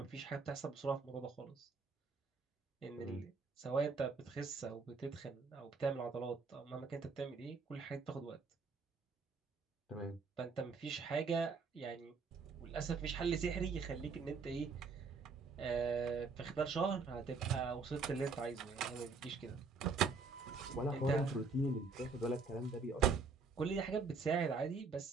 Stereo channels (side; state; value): left; quieter; 4.5 dB